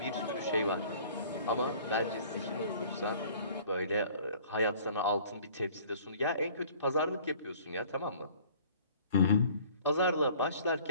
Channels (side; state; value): both; inverted; correlation -0.51